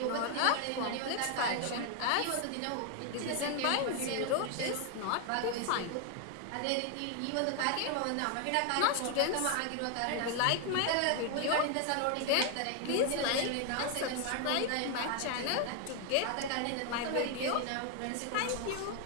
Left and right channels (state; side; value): different; both; correlation 0.00